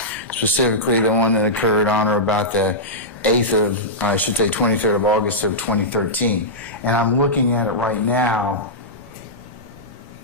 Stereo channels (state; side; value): normal; both; correlation -0.12